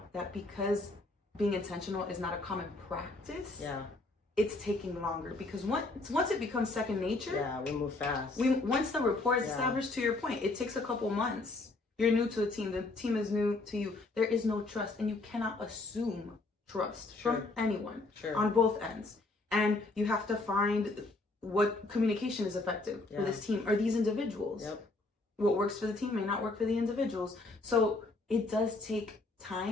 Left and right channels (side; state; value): right; quieter; 3.2 dB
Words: that because being intentional is not a common practice, Yeah. it's taking longer. Because once it becomes second nature, Yeah, we move fast. once the rapport is Yeah. established, to your point, it takes a couple months. You're new to a team. The team is new to you. There is no trust, and you cannot assume trust Sure. from anyone Sure. on both ends. And you have to find what communication is effective for Yeah. this team or these individuals. Yep. What works for the team may not work for the individuals. So it does take